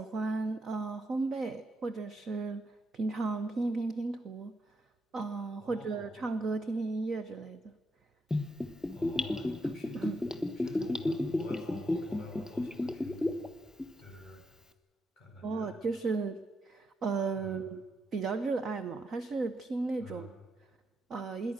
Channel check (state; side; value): normal; both; correlation 0.81